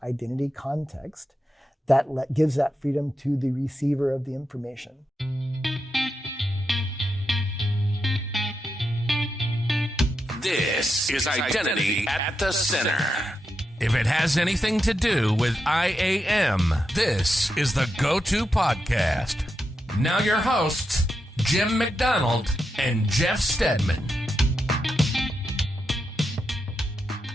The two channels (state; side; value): normal; both; correlation 0.86